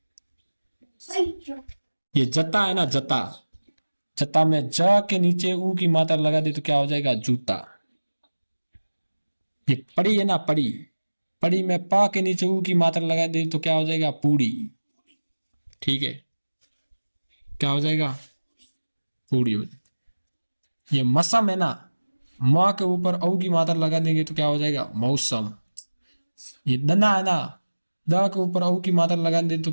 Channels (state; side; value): inverted; both; correlation -1.00